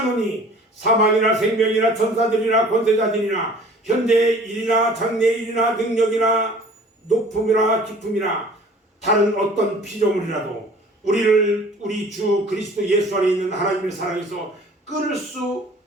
사망이나 생명이나 천사들이나 권세자들이나 현재의 일이나 장래의 일이나 능력이나 높음이나 깊음이나 다른 어떤 피조물이라도 우리를 우리 주 그리스도 예수 안에 있는 하나님의 사랑에서 끊을 수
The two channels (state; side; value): normal; both; correlation 0.49